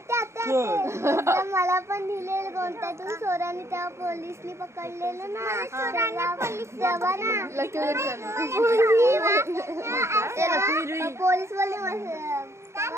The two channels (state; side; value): late; left; 0.13 ms